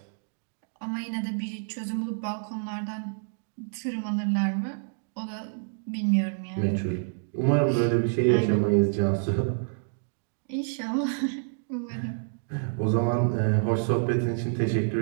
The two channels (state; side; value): silent; left; digital silence